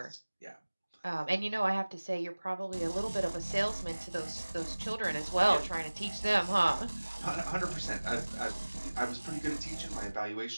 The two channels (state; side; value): inverted; both; correlation -1.00